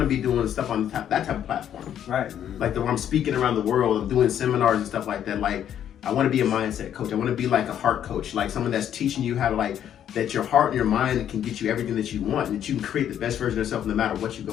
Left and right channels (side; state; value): right; quieter; 10.0 dB